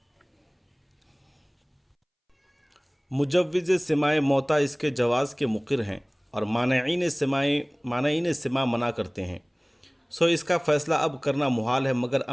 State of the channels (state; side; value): identical; both; correlation 1.00